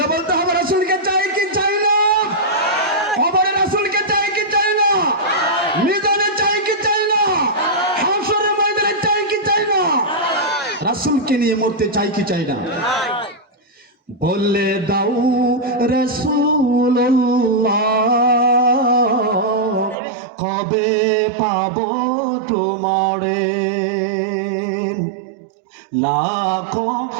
বলতে হবে, রাসূলকে চাই কি চাই না? কবরে রাসূলকে চাই কি চাই না? মিজানে চাই কি চাই না? হাশরের ময়দানে চাই কি চাই না? রাসূলকে নিয়ে মরতে চাই কি চাই না? বলে দাও রাসূলুল্লাহ কবে পাবো তোমারে। লাখো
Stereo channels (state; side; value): drops out; left; at 20.0 s